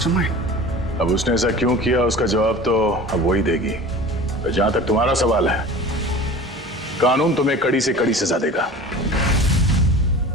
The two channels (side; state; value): both; normal; correlation 0.39